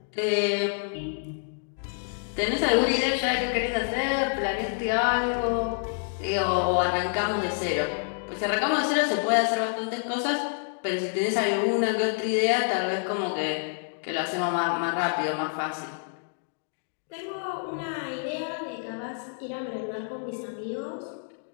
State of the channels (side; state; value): right; silent; 60 dB below the other